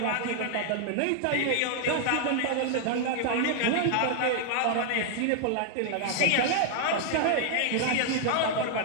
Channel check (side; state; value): both; different; correlation 0.00